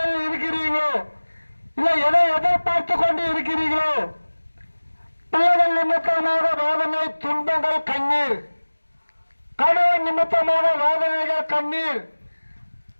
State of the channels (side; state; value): both; inverted; correlation -1.00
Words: இருக்கிறீங்களோ, இல்ல எதை எதிர்பார்த்து கொண்டு இருக்கிறீர்களோ, பிள்ளைகள் நிமித்தமாக வேதனை, துன்பங்கள், கண்ணீர், கணவன் நிமித்தமாக வேதனைகள், கண்ணீர்,